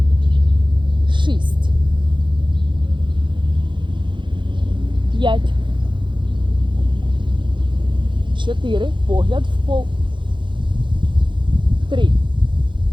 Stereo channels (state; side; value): late; left; 0.23 ms